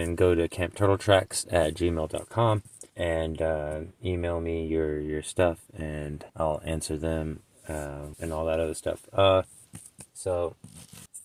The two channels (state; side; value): identical; both; correlation 1.00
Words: go to campturtletracks@gmail.com and email me your stuff, and I'll answer them and all that other stuff. So